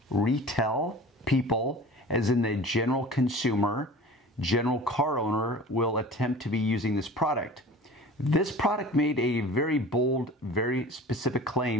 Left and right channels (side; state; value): both; normal; correlation 0.40